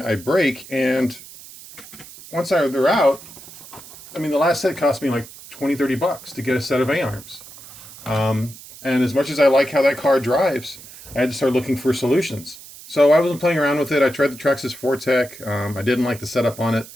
I break, and once they're out, I mean, the last set cost me like $20-30 to get a set of A-arms. And as much as I like how that car drives, I had to start looking for solutions. So I wasn't playing around with it. I tried the Traxxas Fortec. I didn't like the setup on it.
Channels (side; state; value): right; noise; hiss, 17 dB below the sound